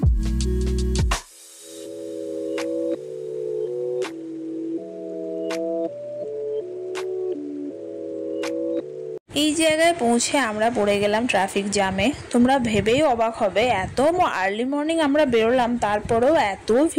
এই জায়গায় পৌঁছে আমরা পড়ে গেলাম ট্রাফিক জ্যামে। তোমরা ভেবেই অবাক হবে, এত আর্লি মর্নিং আমরা বেরোলাম তারপরেও এত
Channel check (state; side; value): identical; both; correlation 1.00